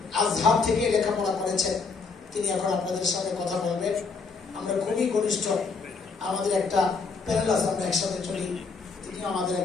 আজহার থেকে লেখাপড়া করেছেন। তিনি এখন আপনাদের সাথে কথা বলবেন। আমরা খুবই ঘনিষ্ঠ, আমাদের একটা প্যানেল আছে, আমরা একসাথে চলি, তিনি আমাদের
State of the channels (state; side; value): quieter; right; 4.7 dB